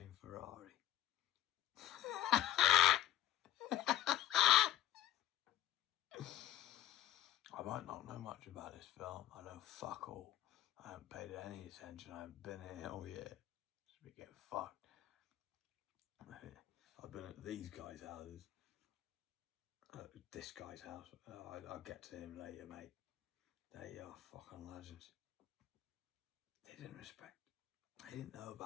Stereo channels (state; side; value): quieter; right; 12.4 dB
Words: Ferrari. I might not know much about this film. I know fuck all. I haven't paid it any attention. I haven't been here all year. Just be getting fucked. I've been at these guys' houses. This guy's house. I'll get to him later, mate. They are fucking legends. They didn't respect. I didn't know